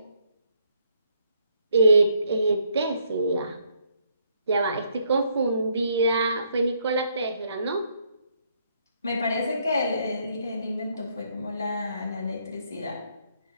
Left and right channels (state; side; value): inverted; both; correlation -0.71